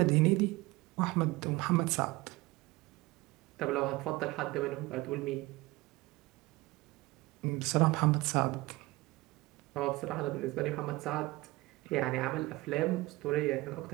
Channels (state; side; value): quieter; left; 21.0 dB